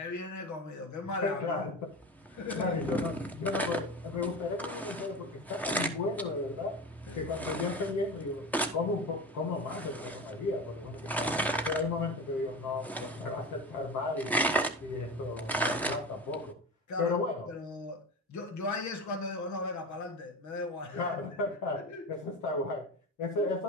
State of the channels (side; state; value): both; normal; correlation 0.27